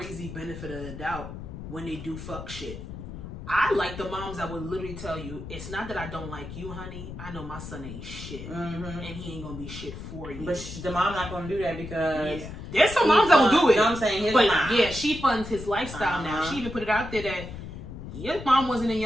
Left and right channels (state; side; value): noise; left; rumble, 10 dB below the sound